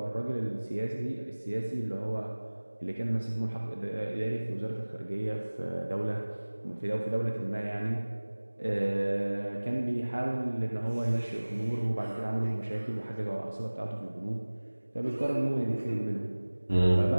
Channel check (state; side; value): inverted; both; correlation -1.00